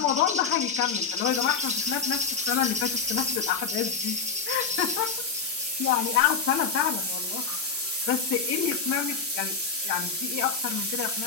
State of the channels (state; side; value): quieter; right; 5.4 dB